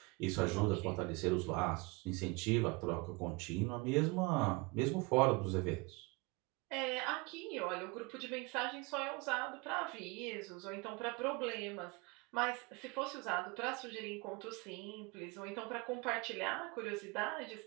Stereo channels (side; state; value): left; quieter; 26.9 dB